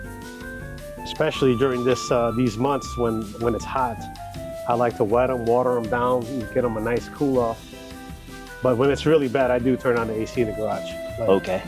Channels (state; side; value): identical; both; correlation 1.00